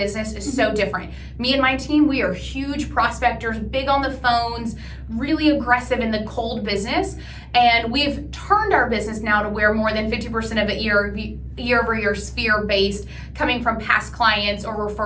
is so different. Me and my team, we are huge prospectors, big on the phones, really aggressive in the cold business. And we've turned our business now to where more than 50% of it year-over-year is fear-based, coming from past clients or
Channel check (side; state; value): both; identical; correlation 1.00